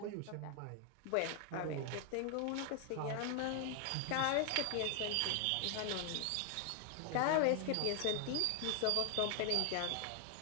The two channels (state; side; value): different; both; correlation 0.00